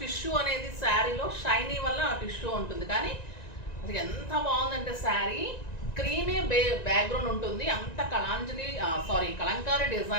టిష్యూ అనేది శారీలో షైనీ వల్ల ఆ టిష్యూ ఉంటుంది, కానీ అది ఎంత బాగుందంటే శారీ క్రీమే బ్యాక్గ్రౌండ్ ఉంటుంది, అంత కలంకారీ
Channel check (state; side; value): late; right; 1.9 ms